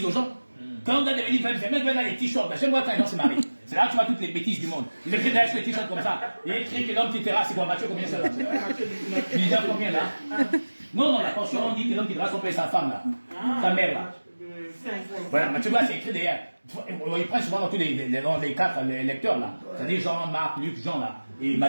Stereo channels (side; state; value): both; inverted; correlation -1.00